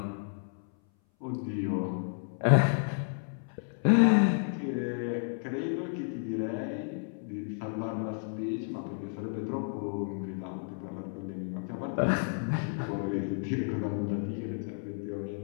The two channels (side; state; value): right; silent; 57 dB below the other